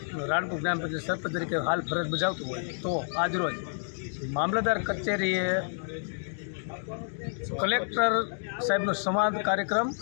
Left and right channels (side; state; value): right; silent; digital silence